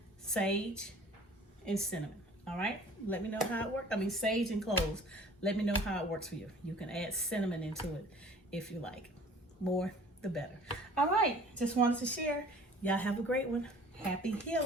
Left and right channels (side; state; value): both; normal; correlation 0.49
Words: Sage and cinnamon. All right? Let me know how it works. I mean, sage and cloves. Let me know how it works for you. You can add cinnamon into it if you like. More, the better. All right. Just wanted to share. Y'all have a great one. Happy